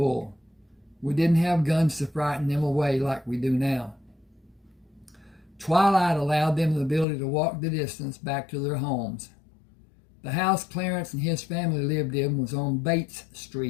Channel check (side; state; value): right; drops out; at 7.1 s